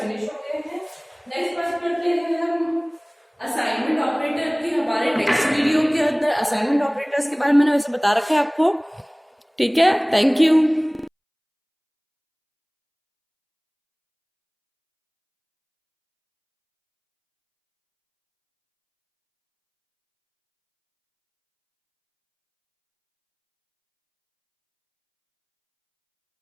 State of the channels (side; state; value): both; identical; correlation 1.00